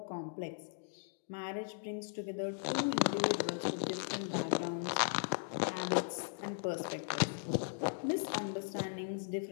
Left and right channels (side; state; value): right; silent; digital silence